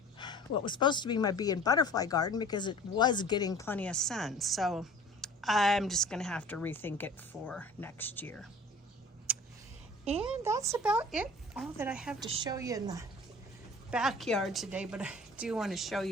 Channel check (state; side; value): normal; both; correlation 0.45